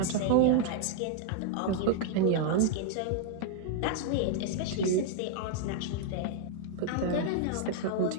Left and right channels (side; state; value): both; different; correlation 0.00